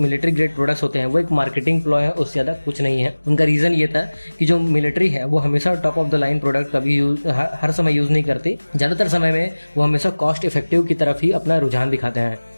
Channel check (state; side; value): inverted; both; correlation -1.00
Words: प्रोडक्ट्स होते हैं वो एक मार्केटिंग प्लॉय है, उससे ज़्यादा कुछ नहीं है। उनका रीज़न ये था कि जो मिलिट्री है वो हमेशा top of the line product कभी हर समय यूज़ नहीं करती। ज़्यादातर समय में वो हमेशा कॉस्ट इफेक्टिव की तरफ ही अपना रुझान दिखाते हैं